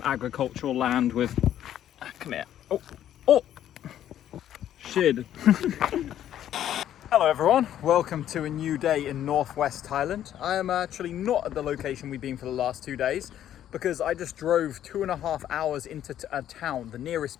agricultural land with, come here, oh, shit. Hello everyone, welcome to a new day in northwest Thailand. I am actually not at the location we've been for the last 2 days, because I just drove 2.5 hours into a town, the nearest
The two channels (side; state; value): right; quieter; 11.2 dB